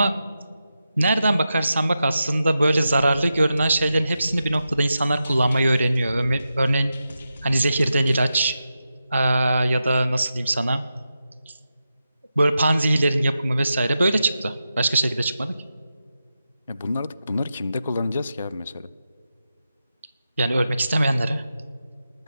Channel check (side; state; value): both; inverted; correlation -0.89